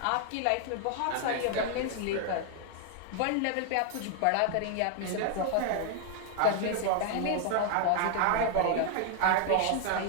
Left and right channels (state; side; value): different; both; correlation 0.00